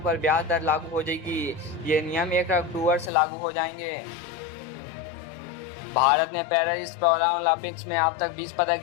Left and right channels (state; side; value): drops out; right; at 3.1 s